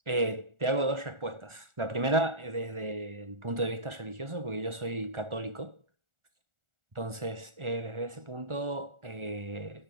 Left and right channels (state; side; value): late; left; 1.4 ms